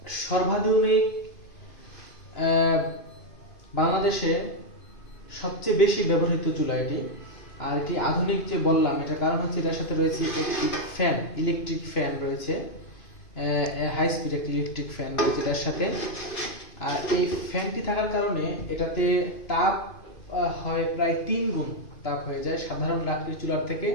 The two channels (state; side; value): late; right; 2.5 ms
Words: সর্বাধুনিক বাংলাদেশে সবচেয়ে বেশি ব্যবহৃত চুলা এটি। আর এটি আধুনিক যে বললাম এটার কারণ হচ্ছে এটার সাথে রয়েছে একটি ফ্যান, ইলেকট্রিক ফ্যান রয়েছে, হাই স্পিড একটি ইলেকট্রিক ফ্যান রয়েছে এটার সাথে। আর এই ফ্যানটি থাকার কারণে এটাতে তাপ হয় প্রায় 3 গুণ তাপ হয়ে যায় সাধারণ লাকড়ির চুলার থেকে,